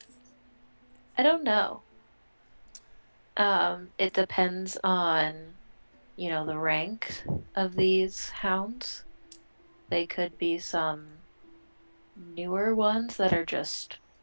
I don't know. It depends on, the rank of these hounds. They could be some newer ones that are just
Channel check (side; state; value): both; inverted; correlation -1.00